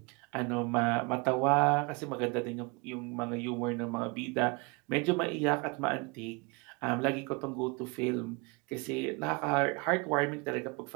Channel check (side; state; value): left; quieter; 29.0 dB